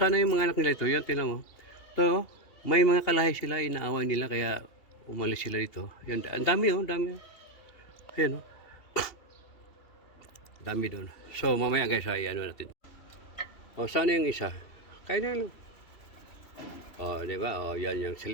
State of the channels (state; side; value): late; right; 2.7 ms